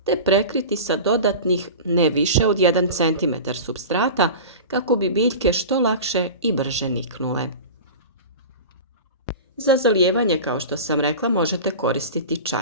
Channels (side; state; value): both; inverted; correlation -0.32